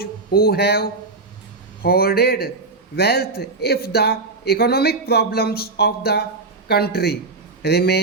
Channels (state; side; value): quieter; left; 3.7 dB